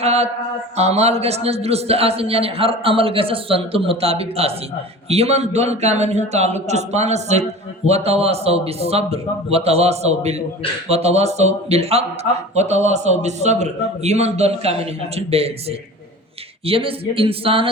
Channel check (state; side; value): normal; both; correlation 0.37